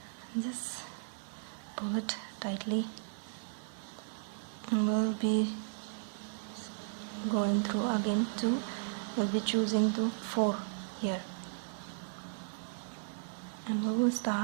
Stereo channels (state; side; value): silent; left; digital silence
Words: Just pull it tightly, and we'll be going through again to, we'll be choosing the 4 here, and we will